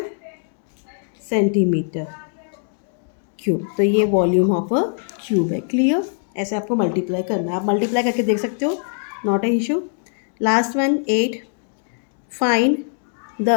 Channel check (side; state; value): right; silent; 62 dB below the other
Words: सेंटीमीटर क्यूब. तो ये वॉल्यूम ऑफ अ क्यूब है. क्लियर? ऐसे आपको मल्टीप्लाई करना है. आप मल्टीप्लाई करके देख सकते हो, not a issue. Last one 8. Find